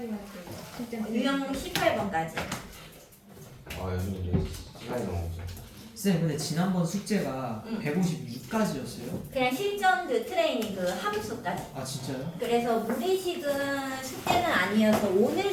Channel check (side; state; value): both; identical; correlation 1.00